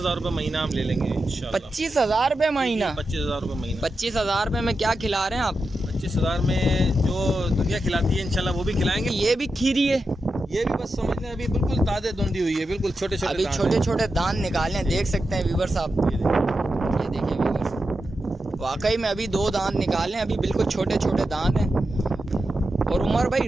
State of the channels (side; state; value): both; normal; correlation 0.89